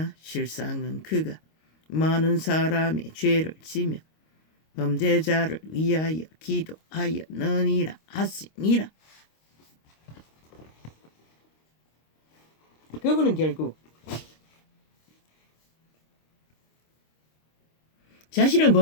실상은 그가 많은 사람의 죄를 지며 범죄자를 위하여 기도하였느니라 하시니라. 그분은 결국 자신을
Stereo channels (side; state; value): right; late; 26 ms